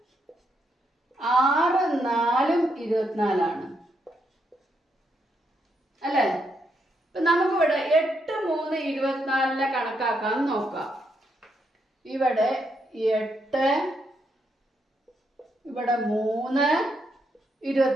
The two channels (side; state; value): both; normal; correlation 0.78